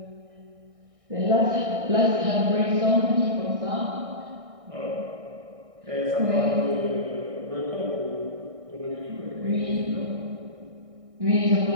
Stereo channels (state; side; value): late; left; 1.6 ms